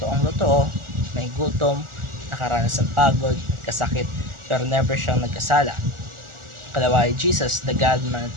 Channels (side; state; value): left; late; 1.4 ms